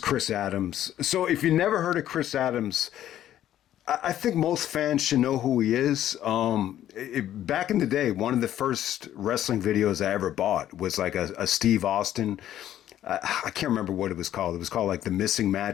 Chris Adams. So if you never heard of Chris Adams, I think most fans should know who he is. Back in the day, one of the first wrestling videos I ever bought was like a Steve Austin. I can't remember what it was called. It was called like The Missing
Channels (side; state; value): right; quieter; 11.9 dB